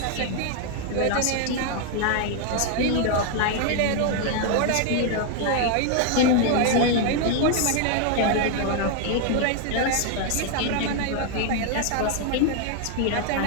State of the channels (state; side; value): different; both; correlation 0.00